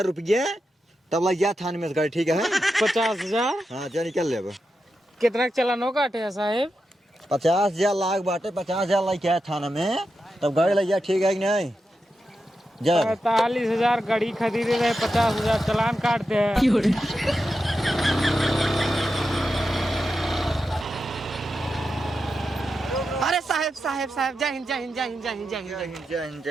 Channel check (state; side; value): normal; both; correlation 0.88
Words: रुपये तब लग जा थाने में गाड़ी ठीक है 50,000। हाँ जा निकल ले अब कितना चलानो काटे साहेब 50,000 लाख बाटे 50,000 लग क्या थाना में तब गाड़ी लग जा ठीक है कि नहीं जा 45,000 गाड़ी खरीदे रहे, 50,000 चालान काटते हैं। अरे साहब साहब साहब, जय हिंद जय हिंद जय हिंद जय हिंद जय हिंद जय हिंद